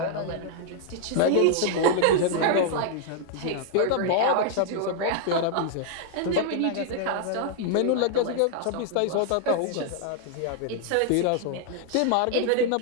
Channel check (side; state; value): both; different; correlation -0.01